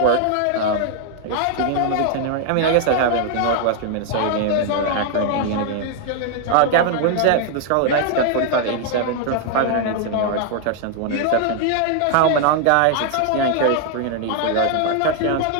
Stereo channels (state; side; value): different; both; correlation 0.00